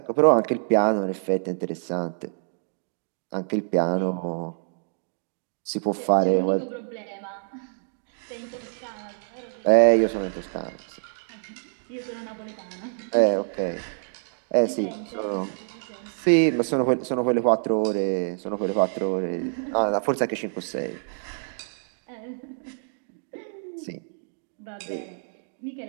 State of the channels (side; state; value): left; silent; digital silence